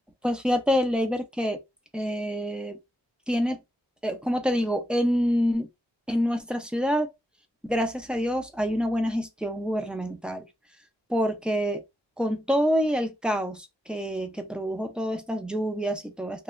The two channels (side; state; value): both; normal; correlation 0.86